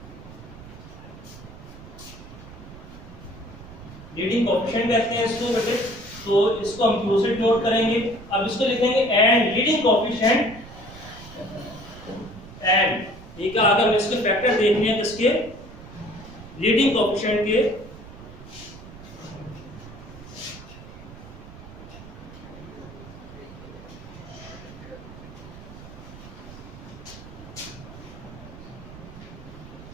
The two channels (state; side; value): noise; right; rumble, 16 dB below the sound